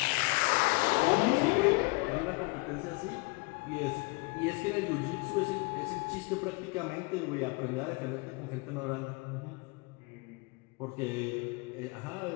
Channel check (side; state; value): right; quieter; 25.9 dB